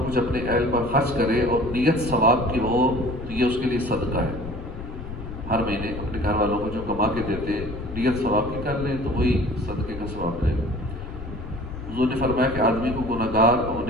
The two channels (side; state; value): left; noise; rumble, 10 dB below the sound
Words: کچھ اپنے اہل پر خرچ کرے اور نیت ثواب کی ہو تو یہ اس کے لیے صدقہ ہے۔ ہر مہینے اپنے گھر والوں کو جو کما کے دیتے نیت ثواب کی کر لیں تو وہی صدقے کا ثواب لے۔ حضور نے فرمایا کہ آدمی کو گناہ گار